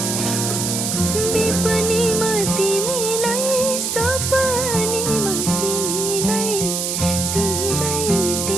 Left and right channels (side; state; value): right; noise; hiss, 1 dB below the sound